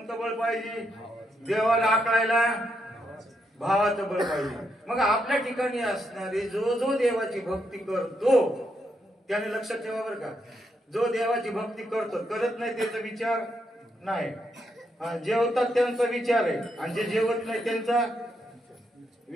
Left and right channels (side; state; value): both; normal; correlation 0.80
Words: बळ पाहिजे? देवाला आकळायला भावाचं बळ पाहिजे. मग आपल्या ठिकाणी असणारे जो जो देवाची भक्ती करतो त्याने लक्षात ठेवा बरं का, जो देवाची भक्ती करतो, करत नाही त्याचा विचार नाही. जेवतात त्यांचा विचार आहे आणि जे जेवत नाही त्यांचा